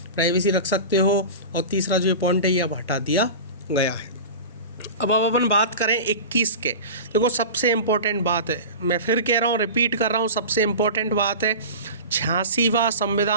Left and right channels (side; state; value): both; inverted; correlation -0.31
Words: प्राइवेसी रख सकते हो। और तीसरा जो पॉइंट है ये अब हटा दिया गया है। अब अपन बात करें 21 के। देखो, सबसे इम्पोर्टेंट बात है, मैं फिर कह रहा हूँ, रिपीट कर रहा हूँ, सबसे इम्पोर्टेंट बात है 86वां